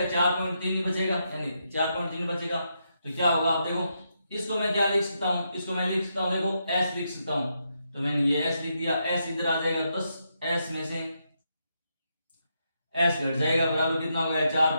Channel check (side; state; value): both; inverted; correlation -0.81